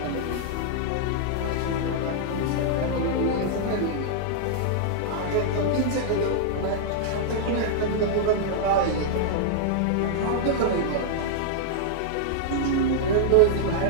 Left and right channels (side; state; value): both; different; correlation -0.01